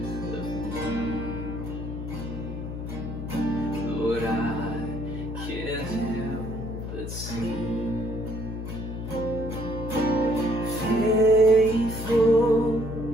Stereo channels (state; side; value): noise; left; hum, 7 dB below the sound